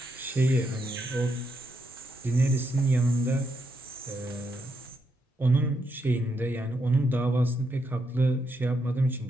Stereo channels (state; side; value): normal; both; correlation 0.80